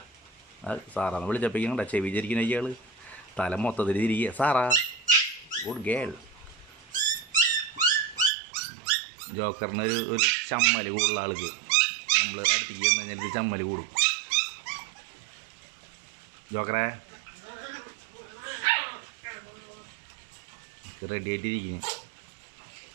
സാറാന്ന് വിളിച്ചപ്പോഴേക്കും ചെവിചരിക്കുന്ന ഇയാൾ തല മൊത്തത്തിൽ തിരികെ. Sarah good girl. ജോക്കറിന് ഒരു ചമ്മൽ കൂടുതലുള്ള ആൾക്ക് നമ്മൾ അടുത്തേക്ക് വന്നു കഴിഞ്ഞാൽ ഇത് ചമ്മൽ കൂടും. ജോക്കറെ റെഡി ആയിട്ടിരിക്കുന്നു.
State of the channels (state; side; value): drops out; left; at 8.3 s